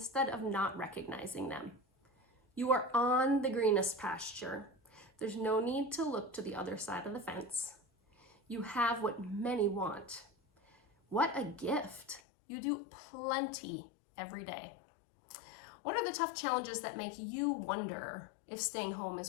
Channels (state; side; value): drops out; right; at 12.2 s